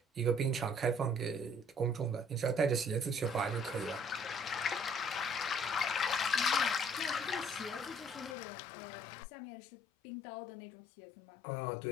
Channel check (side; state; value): right; drops out; at 8.3 s